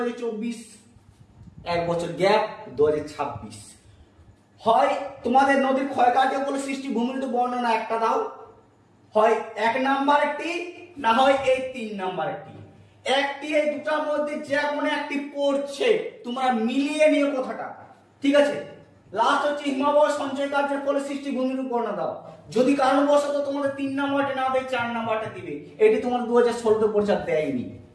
এক বছর গ্যাপ 2026। হয় তোমাদের নদীর ক্ষয়কার্যের ফলে সৃষ্টি ভূমিরূপ বর্ণনা একটা দাও, হয় 1 নাম্বার একটি, না হয় এই 3 নাম্বার একটি। একটি এই দুটার মধ্যে যে কোনো একটি পড়ছে, তোমরা মিলিয়ে নিও কথাটা, ঠিক আছে। লাস্ট হচ্ছে হিমালয় সঞ্চয় কার্যের ফলে সৃষ্টি ভূমিরূপ বর্ণনা দাও। যদি কারণবশত তোমাদের 3 নাম্বারটা না দেয়, 4 নাম্বারটা দিবে। এটি তোমার 2016 পরীক্ষা দেয়নি,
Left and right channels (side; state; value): both; identical; correlation 1.00